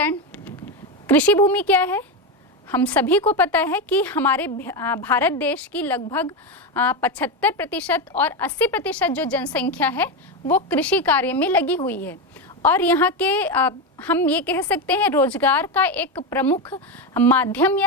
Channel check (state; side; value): normal; both; correlation 0.13